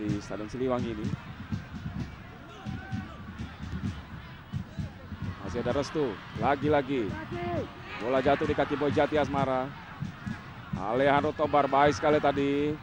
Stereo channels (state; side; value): identical; both; correlation 1.00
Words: Stadion Siliwangi ini. Masih ada Restu, lagi-lagi bola jatuh di kaki Boy Jati Asmara. Alejandro Tobar baik sekali tadi